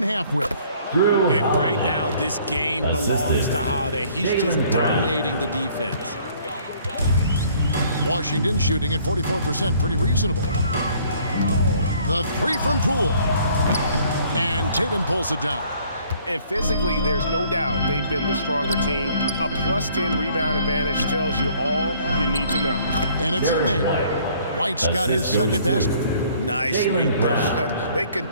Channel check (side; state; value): both; inverted; correlation -0.59